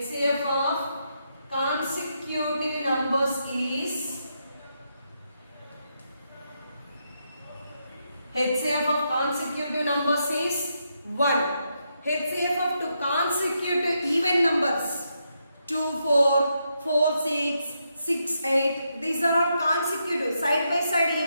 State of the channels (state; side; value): inverted; both; correlation -0.81